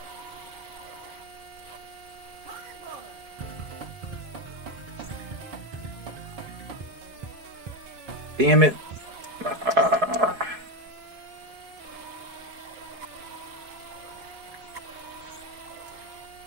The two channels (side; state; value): left; late; 4.7 ms